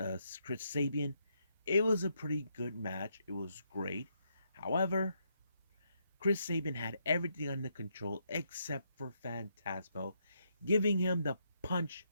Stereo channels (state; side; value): inverted; both; correlation -0.77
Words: Chris Sabian. It was a pretty good match. It was great. However, Chris Sabin had everything under control except for Phantasmo, giving him the punch